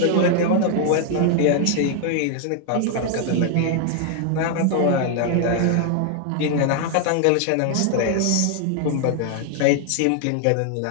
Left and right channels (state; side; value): different; both; correlation 0.00